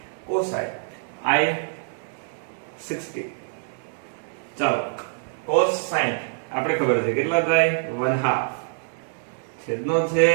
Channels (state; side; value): silent; left; digital silence